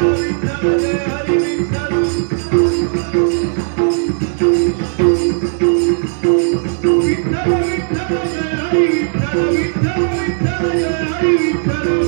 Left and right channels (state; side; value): silent; left; 69 dB below the other